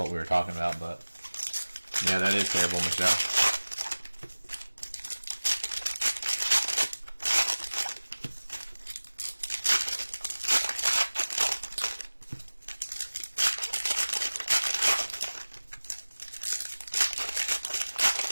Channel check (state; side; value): inverted; both; correlation -1.00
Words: we were talking about, but yeah, that is terrible, Michelle.